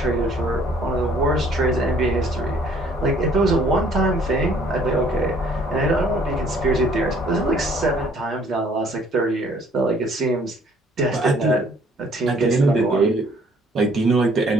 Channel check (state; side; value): normal; both; correlation 0.60